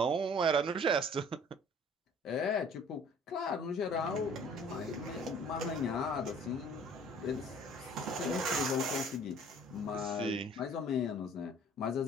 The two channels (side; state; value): both; normal; correlation 0.52